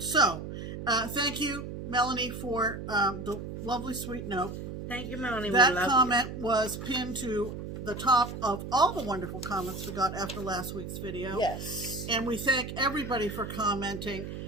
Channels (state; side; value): noise; right; hum, 8 dB below the sound